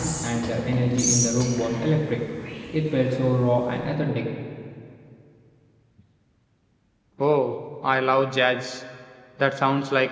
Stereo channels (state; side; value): identical; both; correlation 1.00